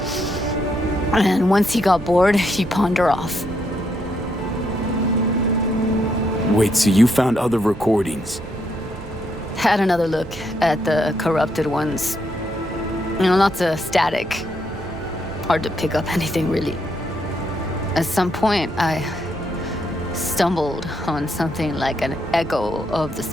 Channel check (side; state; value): both; normal; correlation 0.77